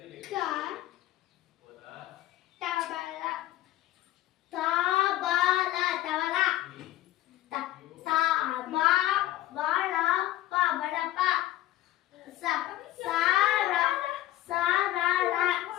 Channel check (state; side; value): quieter; right; 14.9 dB